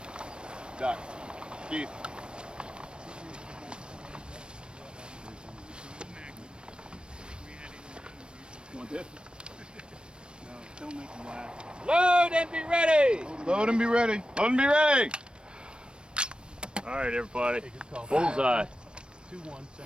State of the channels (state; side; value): late; left; 0.054 ms